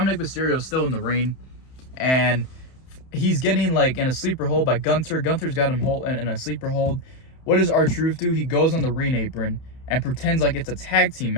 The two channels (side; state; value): right; late; 31 ms